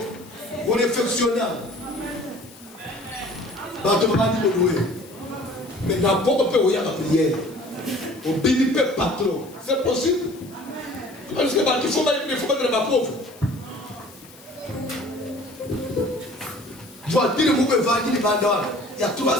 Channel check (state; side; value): noise; left; hiss, 22 dB below the sound